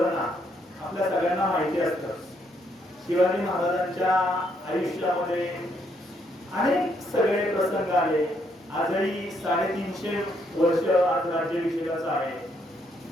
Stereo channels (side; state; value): both; normal; correlation 0.73